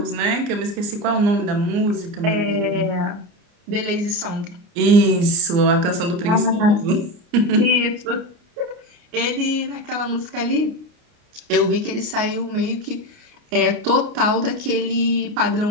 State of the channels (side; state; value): left; late; 29 ms